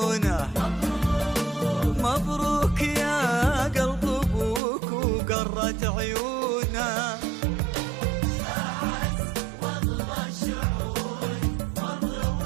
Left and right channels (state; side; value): drops out; left; at 4.6 s